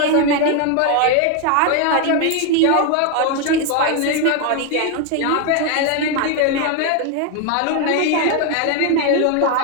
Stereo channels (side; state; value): both; different; correlation 0.01